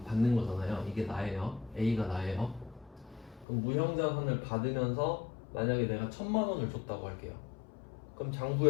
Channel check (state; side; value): drops out; right; at 3.5 s